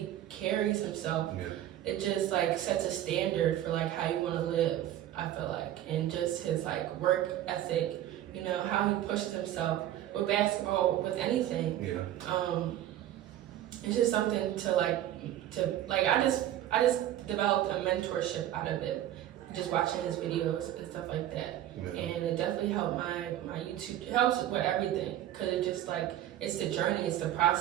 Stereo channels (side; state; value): left; quieter; 12.5 dB